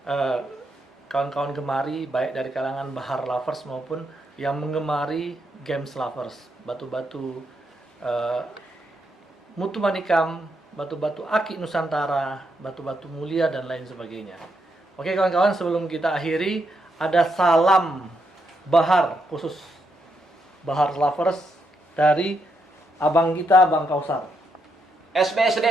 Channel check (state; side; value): normal; both; correlation 0.79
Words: kawan-kawan gemari, baik dari kalangan bahar lovers maupun yang menggemari games lovers. Batu-batu mutu manikam, batu-batu akik Nusantara, batu-batu mulia, dan lain sebagainya. Oke kawan-kawan, sebelum kita akhiri, ada salam bahar khusus bahar lovers dari abang kita, Bang Kausar.